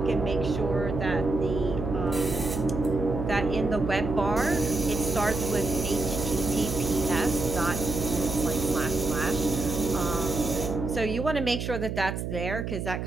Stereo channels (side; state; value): right; noise; hum, 4 dB below the sound